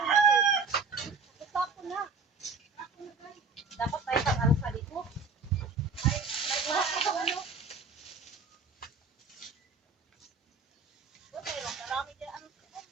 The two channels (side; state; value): left; quieter; 4.1 dB